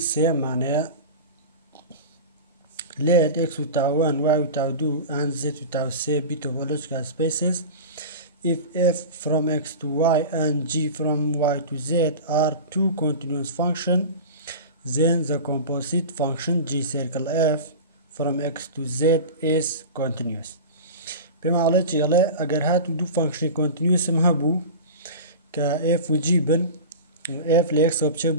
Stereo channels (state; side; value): inverted; both; correlation -0.31